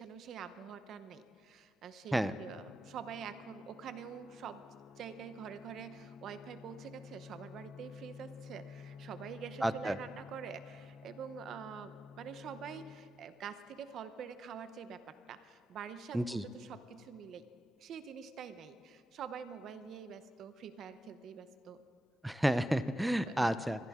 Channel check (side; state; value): both; normal; correlation 0.88